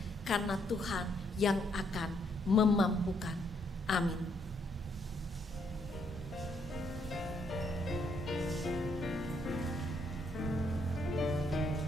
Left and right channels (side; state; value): both; normal; correlation 0.72